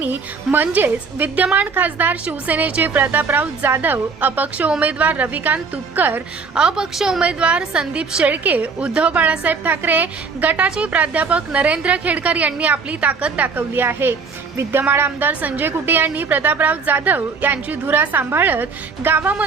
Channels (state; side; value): quieter; left; 5.0 dB